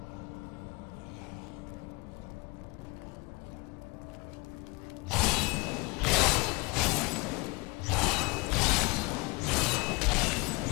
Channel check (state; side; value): quieter; right; 26.7 dB